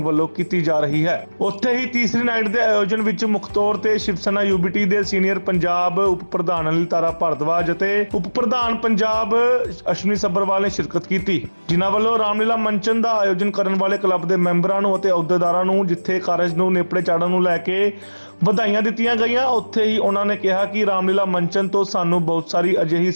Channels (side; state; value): both; inverted; correlation -1.00